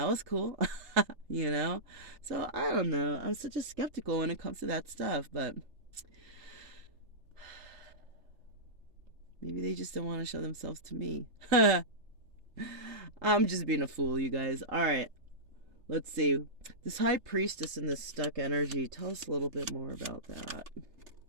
was cool. So I don't know. I'm such a skeptical when it comes to that stuff, but maybe they just don't want to show themselves to me. I'm just being a fool, you guys. All right. Let's see. This high priestess and this stuck energy. Tell us a little bit more about that.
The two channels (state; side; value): late; left; 3.3 ms